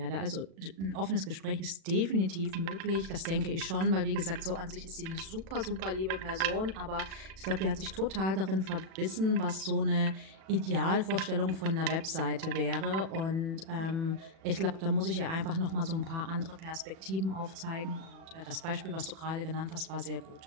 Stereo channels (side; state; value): left; late; 37 ms